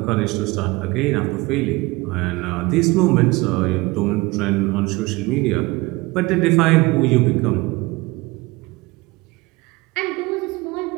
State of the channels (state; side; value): quieter; left; 22.8 dB